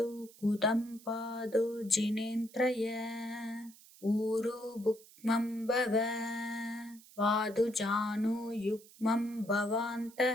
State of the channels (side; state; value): right; noise; hiss, 23 dB below the sound